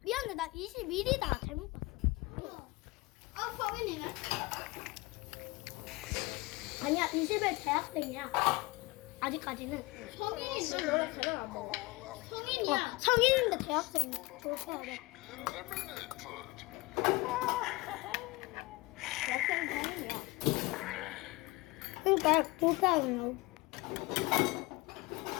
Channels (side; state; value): right; quieter; 22.9 dB